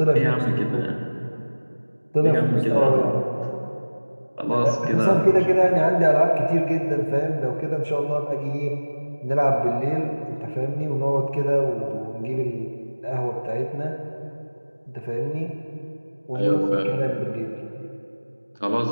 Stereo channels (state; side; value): inverted; both; correlation -1.00